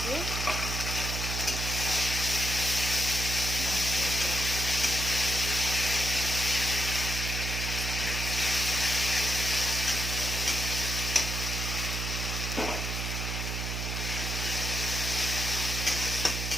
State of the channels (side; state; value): right; noise; hum, 3 dB below the sound